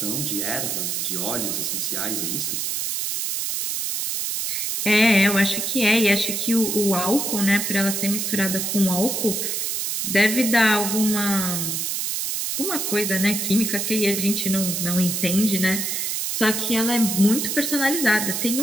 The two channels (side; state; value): right; noise; hiss, 1 dB below the sound